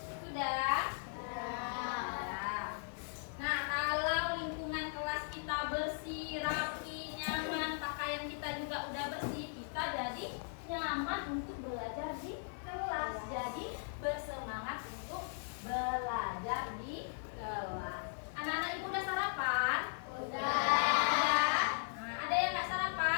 Sudah? Sudah. Nah, kalau lingkungan kelas kita bersih, rapi, nyaman, pakaian kita juga udah bersih, kita jadi nyaman untuk belajar di kelas. Jadi bersemangat untuk belajar di kelas. Anak-anak ibu udah sarapan? Udah. Nah, ada yang nggak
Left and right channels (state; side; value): silent; right; 52 dB below the other